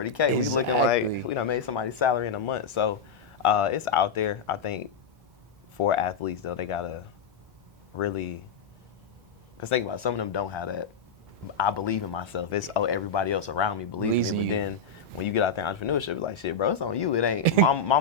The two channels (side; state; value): right; quieter; 4.4 dB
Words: Exactly. We looking like we done made somebody's salary in a month. So it's out there. I think for athletes, though, they got to really, because think about it, some of them don't have that. I believe in myself. It's, everybody else around me believes in me. But then when you get out there in entrepreneurship, it's like, shit, bro, it's on you. It ain't,